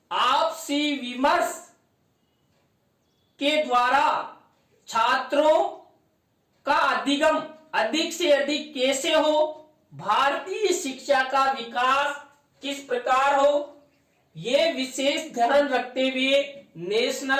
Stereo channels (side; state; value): both; identical; correlation 1.00